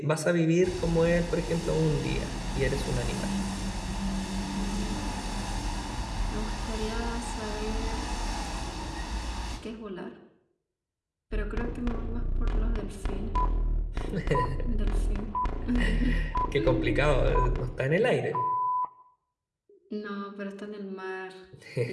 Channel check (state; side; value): identical; both; correlation 1.00